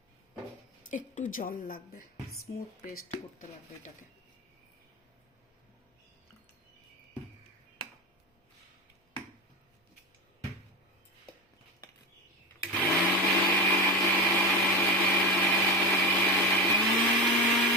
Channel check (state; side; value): normal; both; correlation 0.23